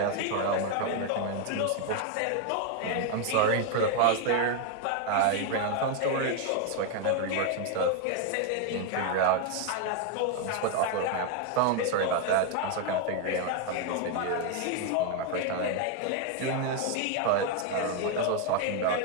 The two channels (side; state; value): both; different; correlation 0.01